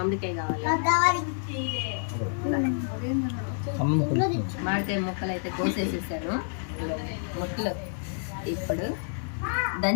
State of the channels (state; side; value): silent; right; digital silence